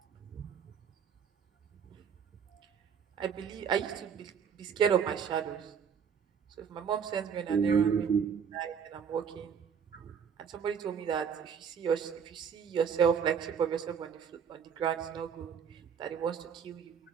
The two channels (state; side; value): quieter; left; 7.1 dB